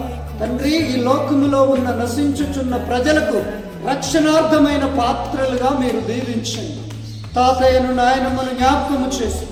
తండ్రి ఈ లోకములో ఉన్న నశించుచున్న ప్రజలకు రక్షణార్థమైన పాత్రలుగా మీరు దీవించండి. తాతయ్యను నాయనమ్మను జ్ఞాపకము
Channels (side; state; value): both; identical; correlation 1.00